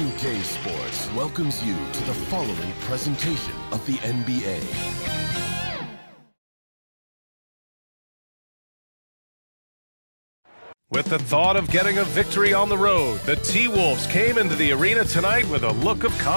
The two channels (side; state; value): both; inverted; correlation -1.00